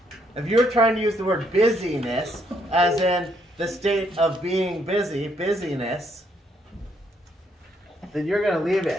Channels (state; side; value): normal; both; correlation 0.72